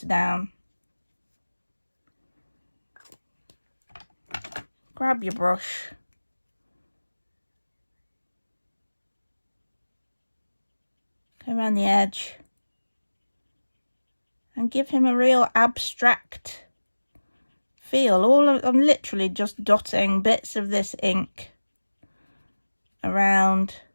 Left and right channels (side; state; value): both; inverted; correlation -1.00